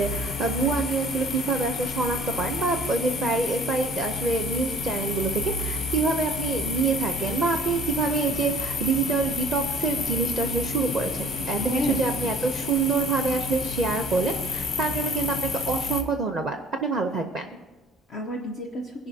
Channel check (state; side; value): normal; both; correlation 0.52